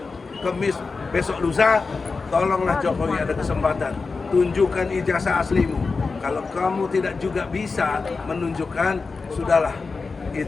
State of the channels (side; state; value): right; quieter; 4.3 dB